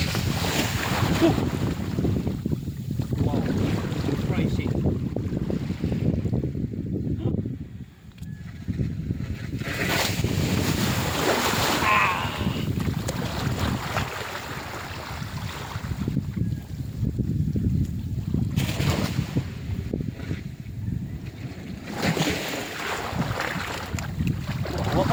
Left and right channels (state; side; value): identical; both; correlation 1.00